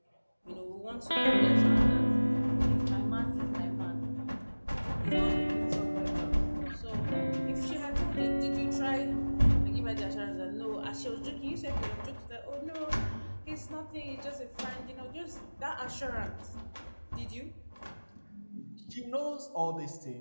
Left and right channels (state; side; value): inverted; both; correlation -1.00